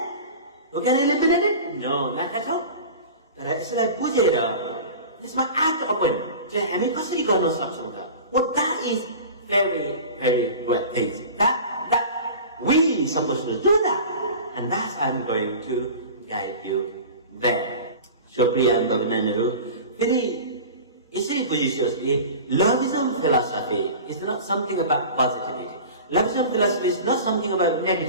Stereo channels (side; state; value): both; inverted; correlation -0.36